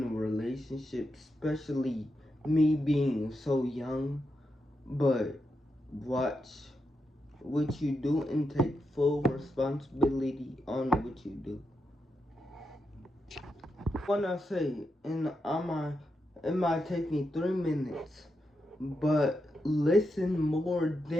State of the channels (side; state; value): both; normal; correlation 0.85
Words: a relationship, especially me being so young. But watch what you do and take full responsibility on what you do. When I say, and it might take me 3 minutes, but listen more